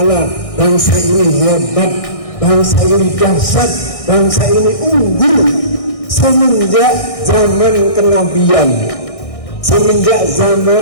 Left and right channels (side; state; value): right; late; 1.6 ms